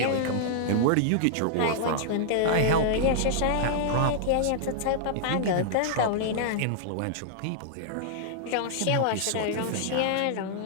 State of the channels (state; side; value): different; both; correlation -0.01